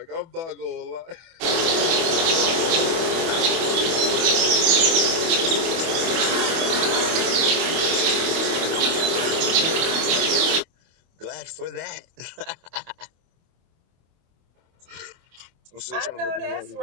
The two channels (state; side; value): late; left; 24 ms